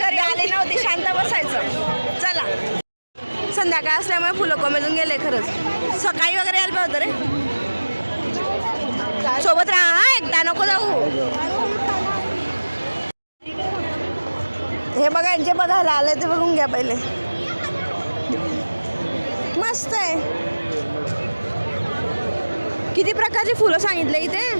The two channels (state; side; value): inverted; both; correlation -1.00